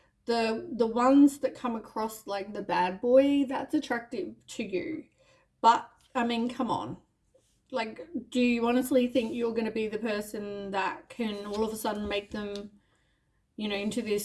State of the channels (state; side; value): identical; both; correlation 1.00